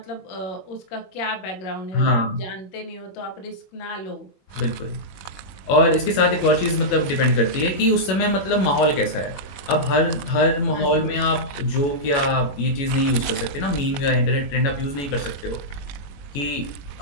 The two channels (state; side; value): late; right; 21 ms